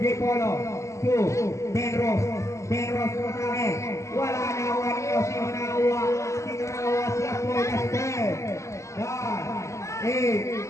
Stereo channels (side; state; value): right; late; 0.14 ms